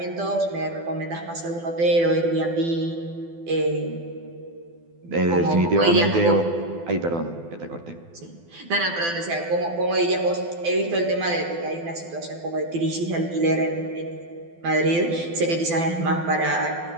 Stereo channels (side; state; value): left; late; 12 ms